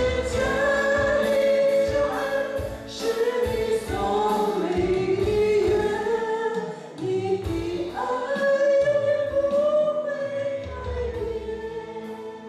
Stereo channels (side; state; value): both; identical; correlation 1.00